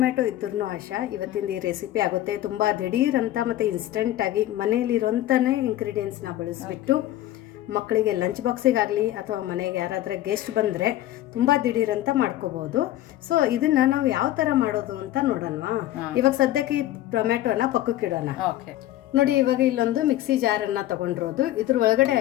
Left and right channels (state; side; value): quieter; right; 14.2 dB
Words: ಇದ್ರೂ ಆಶಾ ಇವತ್ತಿಂದ ಈ ರೆಸಿಪಿ ಆಗುತ್ತೆ. ತುಂಬ ದಿಢೀರ್ ಅಂತ ಮತ್ತು ಇನ್ಸ್ಟೆಂಟಾಗಿ ಮನೆಯಲ್ಲಿರೋಂಥನೇ ಇಂಗ್ರೀಡಿಯೆಂಟ್ಸ್ನ ಬಳಸಿಬಿಟ್ಟು ಮಕ್ಕಳಿಗೆ ಲಂಚ್ ಬಾಕ್ಸಿಗಾಗಲಿ ಅಥವಾ ಮನೆಗೆ ಯಾರಾದರೆ ಗೆಸ್ಟ್ ಬಂದರೆ ತುಂಬ ದಿಢೀರಂತ ಮಾಡ್ಕೋಬೋದು. ಸೊ ಇದನ್ನು ನಾವು ಯಾವ ಥರ ಮಾಡೋದು ಅಂತ ನೋಡೋಣವಾ? ಇವಾಗ ಸದ್ಯಕ್ಕೆ ಈ ಟೊಮೆಟೊನ ಪಕ್ಕಕ್ಕಿಡೋಣ. ನೋಡಿ, ಇವಾಗ ಇಲ್ಲೊಂದು ಮಿಕ್ಸಿ ಜಾರನ್ನು ತಗೊಂಡಿರೋದು. ಇದ್ರ ಒಳಗಡೆ